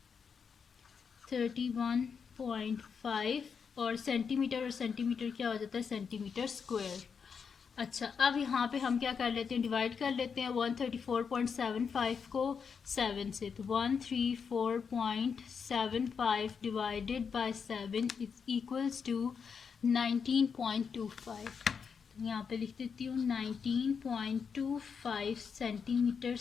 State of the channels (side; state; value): right; quieter; 6.2 dB